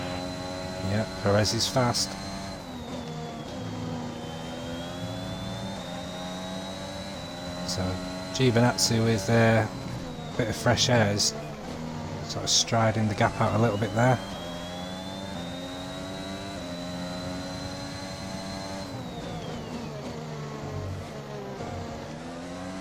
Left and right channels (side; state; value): both; identical; correlation 1.00